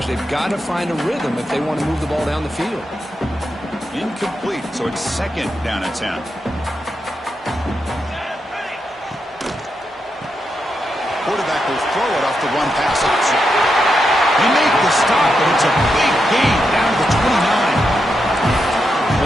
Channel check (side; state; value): both; normal; correlation 0.85